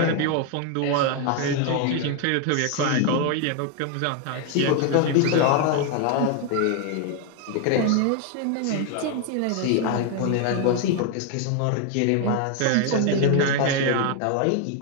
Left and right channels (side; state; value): both; different; correlation 0.01